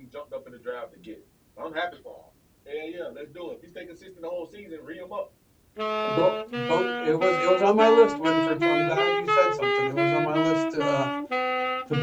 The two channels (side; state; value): both; identical; correlation 1.00